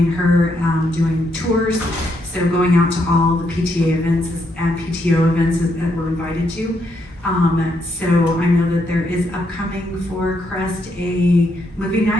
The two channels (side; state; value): both; normal; correlation 0.77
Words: her doing tours, so going out to all the PTA events and PTO events that we're invited to. So I know that there is upcoming for Crest a movie